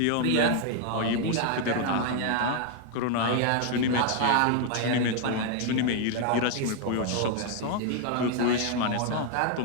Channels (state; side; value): different; both; correlation 0.00